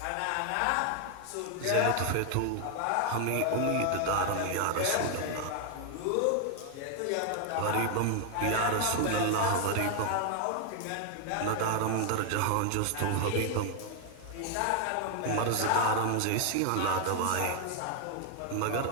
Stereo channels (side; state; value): both; different; correlation 0.00